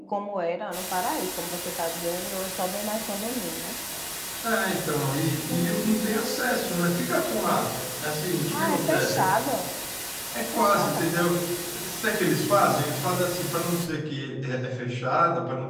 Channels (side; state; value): both; identical; correlation 1.00